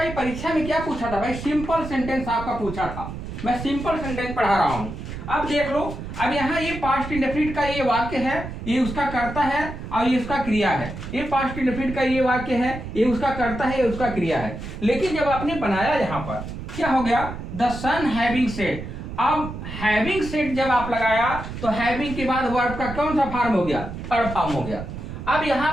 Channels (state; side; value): noise; right; rumble, 9 dB below the sound